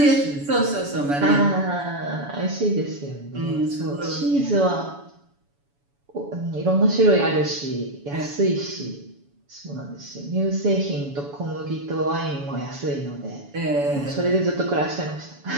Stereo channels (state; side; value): late; left; 7.1 ms